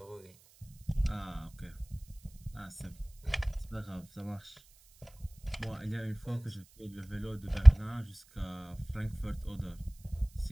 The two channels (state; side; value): noise; right; hiss, 27 dB below the sound